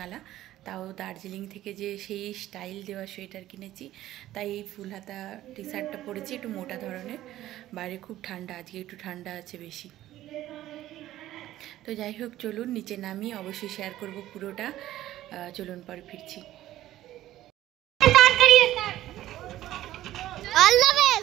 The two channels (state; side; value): quieter; left; 14.2 dB